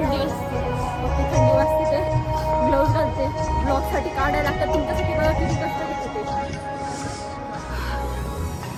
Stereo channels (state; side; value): identical; both; correlation 1.00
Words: थंडी वाजते, ग्लोव्ज घालते, ब्लॉगसाठी काढायला लागतात. तुमच्यासाठी बघा किती कष्ट घेते.